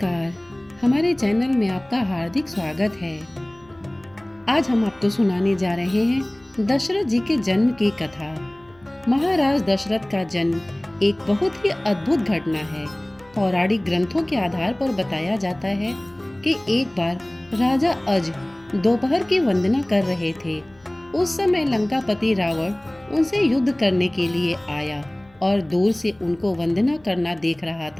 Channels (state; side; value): noise; left; hum, 30 dB below the sound